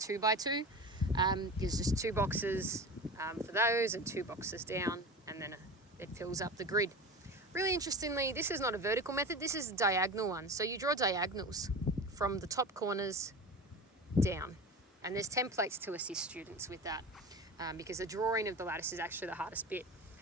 There's just 2 boxes for those and 2 boxes down, and then it fills up the grid. Really interestingly, this is not a vertical method, this is a diagonal one. So you draw diagonals from the top corners down. And there's templates to assist students with that, because the drawing of the lattice is actually the hardest bit.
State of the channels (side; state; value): both; normal; correlation 0.30